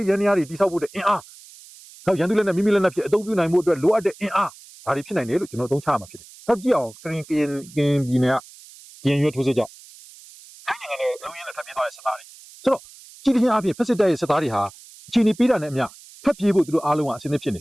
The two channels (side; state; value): right; noise; hiss, 21 dB below the sound